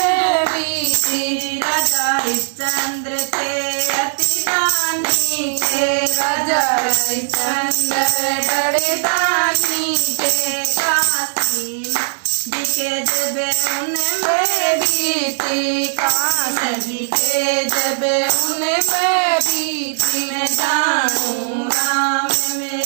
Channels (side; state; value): left; silent; digital silence